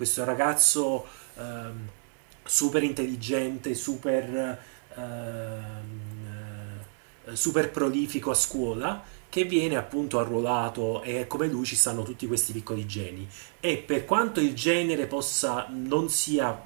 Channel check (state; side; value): silent; left; digital silence